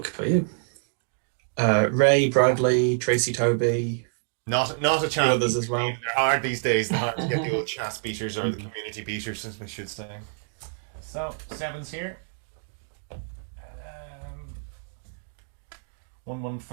for you. Ray, Bradley, Tracy Toby, Not a chat. others as well. They're hard these days. They're hard to get the old chat speakers or the community beaters, as we should say. So 7's here.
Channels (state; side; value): silent; left; digital silence